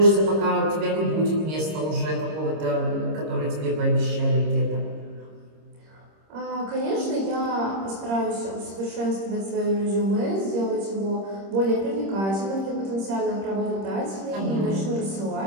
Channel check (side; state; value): left; late; 26 ms